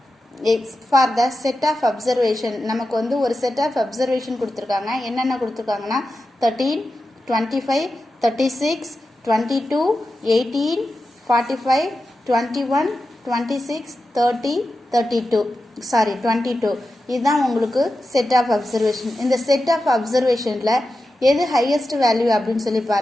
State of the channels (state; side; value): normal; both; correlation 0.91